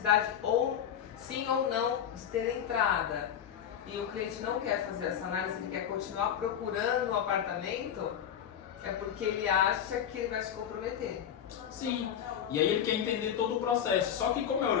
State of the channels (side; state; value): right; quieter; 9.2 dB